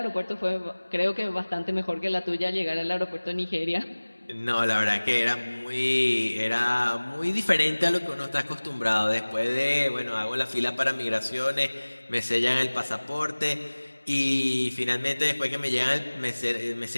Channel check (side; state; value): both; inverted; correlation -1.00